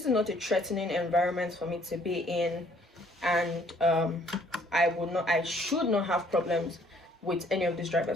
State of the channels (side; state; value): both; normal; correlation 0.62